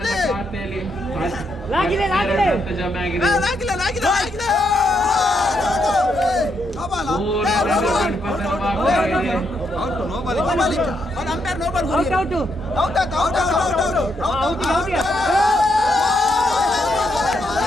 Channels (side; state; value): both; normal; correlation 0.78